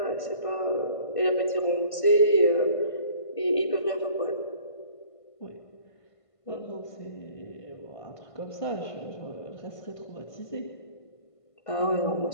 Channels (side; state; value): right; late; 1.5 ms